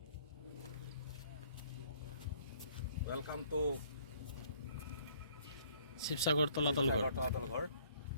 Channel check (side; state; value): both; inverted; correlation -0.60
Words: Welcome to Sivasagar তলাতল ঘৰ